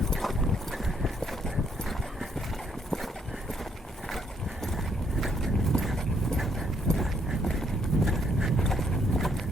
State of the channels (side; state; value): both; normal; correlation 0.71